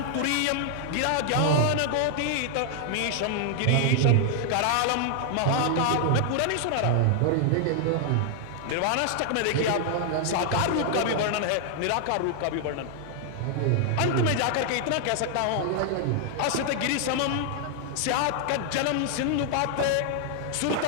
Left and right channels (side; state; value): both; different; correlation 0.00